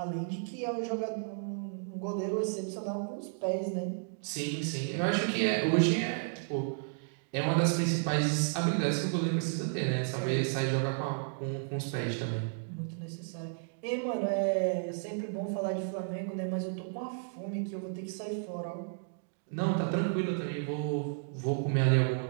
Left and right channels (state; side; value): silent; left; digital silence